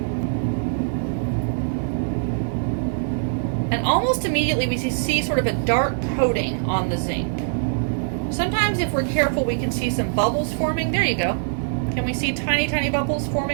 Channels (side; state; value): left; silent; digital silence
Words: And almost immediately we see sort of a dark coating on the zinc. Sometimes if we're careful, we can see some bubbles forming. There you go. Can we see tiny, tiny bubbles